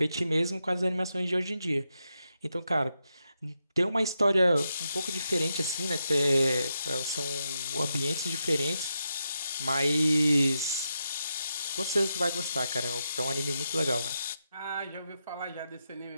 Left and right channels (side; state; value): both; inverted; correlation -0.85